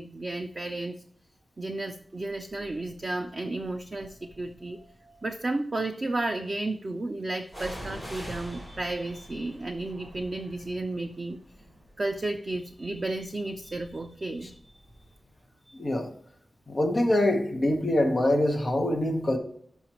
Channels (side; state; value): both; normal; correlation 0.92